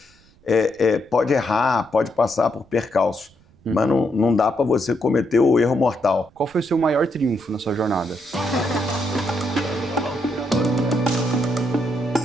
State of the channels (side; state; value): right; noise; rumble, 30 dB below the sound